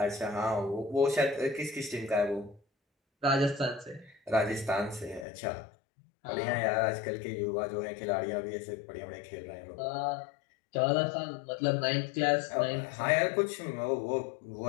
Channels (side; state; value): right; drops out; at 5.2 s